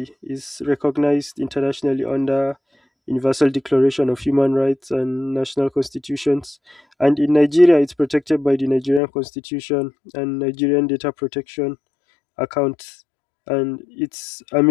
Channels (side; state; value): right; drops out; at 9.0 s